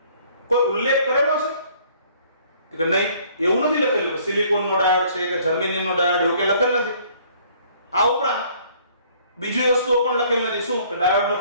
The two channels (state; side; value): inverted; both; correlation -0.59